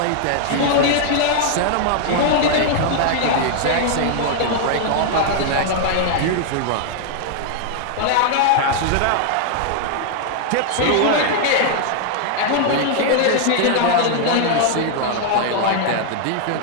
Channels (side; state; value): both; different; correlation 0.00